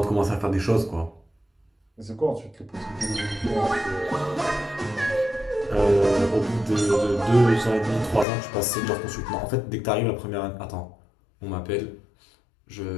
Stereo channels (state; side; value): drops out; right; at 8.2 s